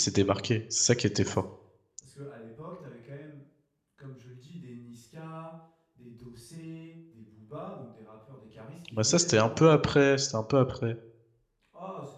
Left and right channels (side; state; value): both; identical; correlation 1.00